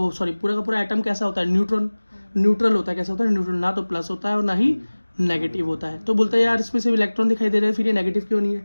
का पूरा एटम कैसा होता है? न्यूट्रल होता है। कैसा होता है? न्यूट्रल, ना तो प्लस होता है और ना ही नेगेटिव होता है। तो बोलता है यार इसमें सिर्फ इलेक्ट्रॉन दिखाई दे रहे हैं, फिर ये नेगेटिव क्यों नहीं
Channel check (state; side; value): inverted; both; correlation -1.00